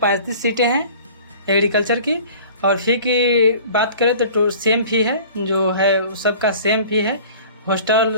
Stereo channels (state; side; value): inverted; both; correlation -0.45